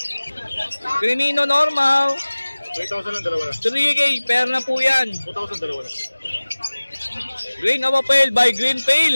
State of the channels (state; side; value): inverted; both; correlation -1.00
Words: Crimino normal. 3,000 lang, dalawa na. 3K, pair na po yan. 2,000, dalawa na. Green Opa Pale by Green